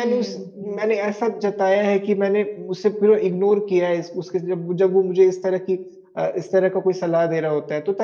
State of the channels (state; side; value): identical; both; correlation 1.00